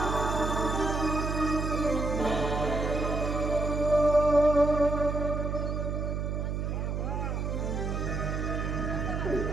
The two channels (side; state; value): right; noise; hum, 1 dB below the sound